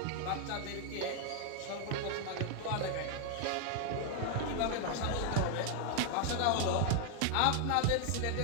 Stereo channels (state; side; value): different; both; correlation 0.00